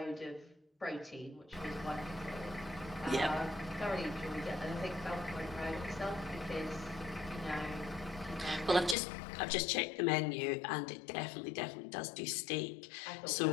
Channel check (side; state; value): right; drops out; at 9.0 s